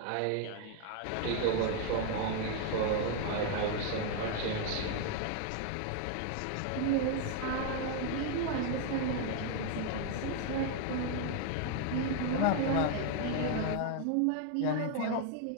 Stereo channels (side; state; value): both; different; correlation 0.00